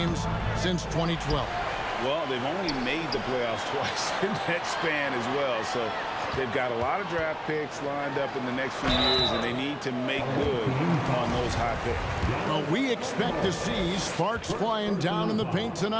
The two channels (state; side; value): identical; both; correlation 1.00